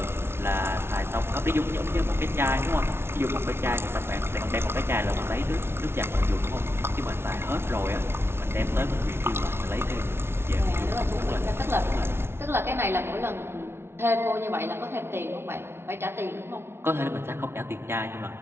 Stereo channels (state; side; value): late; left; 0.12 ms